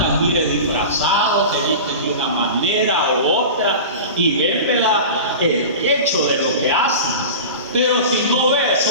mire, disfrazados, se visten de una manera u otra y ven, ¿verdad?, el hecho de lo que hacen. Pero si no ve,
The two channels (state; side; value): inverted; both; correlation -0.31